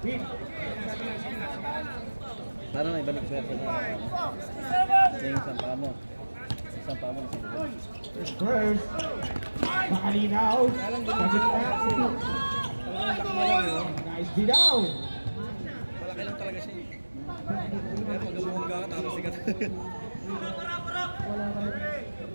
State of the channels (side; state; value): both; inverted; correlation -1.00